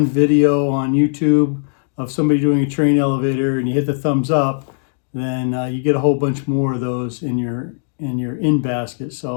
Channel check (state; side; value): silent; right; digital silence